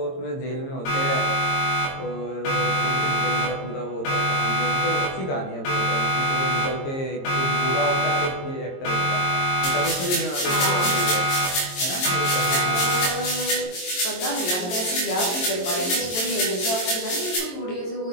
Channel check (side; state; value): right; late; 22 ms